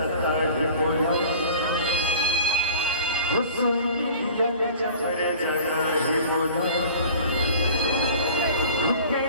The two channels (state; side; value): inverted; both; correlation -0.43